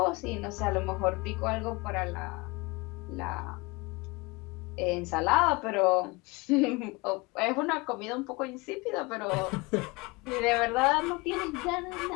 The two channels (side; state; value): right; quieter; 25.4 dB